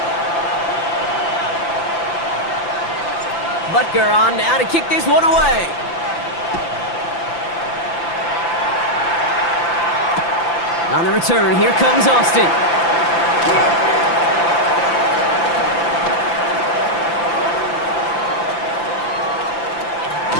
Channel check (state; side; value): late; right; 5.9 ms